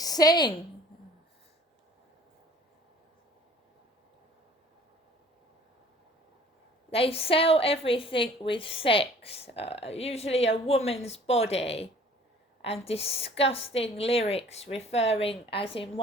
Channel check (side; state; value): both; normal; correlation 0.51